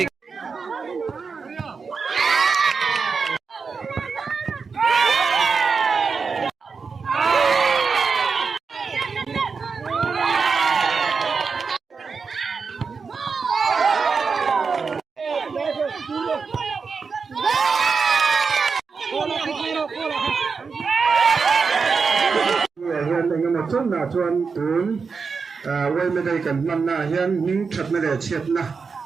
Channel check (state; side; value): quieter; left; 5.1 dB